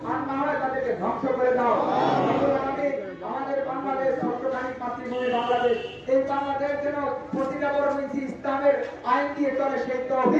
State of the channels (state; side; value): identical; both; correlation 1.00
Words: আর না হয় তাদেরকে ধ্বংস করে দাও। আমাদের বাংলাদেশ সত্যকামী মাতৃভূমি বাংলাদেশ, এই বাংলাদেশ যেন প্রতিটা বড় মিছি ইসলামের আইন দিয়ে চলে সেই